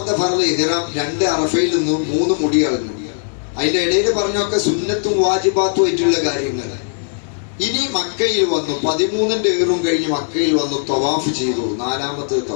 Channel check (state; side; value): silent; right; digital silence